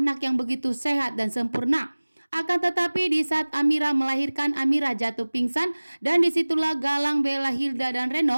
yang begitu sehat dan sempurna. Akan tetapi di saat Amira melahirkan, Amira jatuh pingsan dan disitulah Galang, Bella, Hilda dan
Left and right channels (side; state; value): both; inverted; correlation -1.00